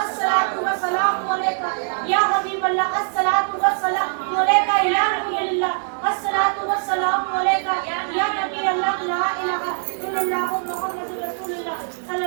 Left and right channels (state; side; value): silent; left; digital silence